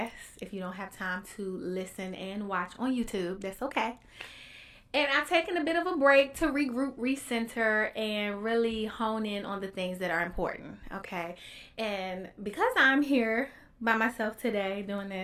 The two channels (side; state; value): both; identical; correlation 1.00